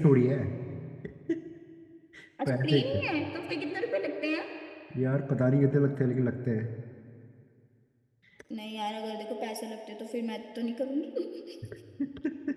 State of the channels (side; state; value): both; identical; correlation 1.00